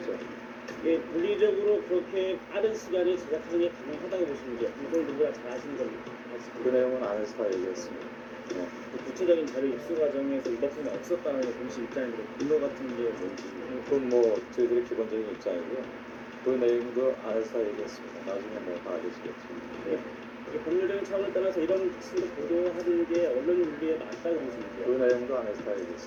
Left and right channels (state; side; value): identical; both; correlation 1.00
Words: 이게 물리적으로 그렇게 빠른 시간에 제작하는 게 가능하다고 보시는 게 그걸 누구나 잘 아시는 겁니까? 그 내용은 안에서 다 얘기했습니다. 네. 구체적인 자료 입수 과정에서 위법성이 없었다는 게 공식 입장인데 근거 같은 게 뭔지 그건 저희들의 기본적인 입장이고요. 그 내용도 안에서 다 얘기했습니다. 나중에 다 알려지겠죠. 네. 이게 법률적인 차원을 떠나서 이런 식으로 보도하는 게 언론 윤리에 맞다고 보시는데요? 그 내용도 안에서 다